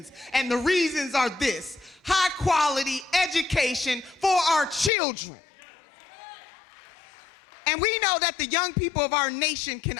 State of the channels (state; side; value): drops out; right; at 4.9 s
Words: And the reasons are this: high quality education for our children. And we know that the young people of our nation can